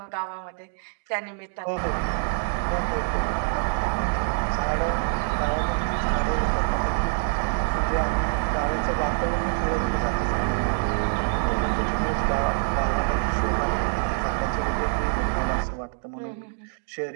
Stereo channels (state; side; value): silent; left; digital silence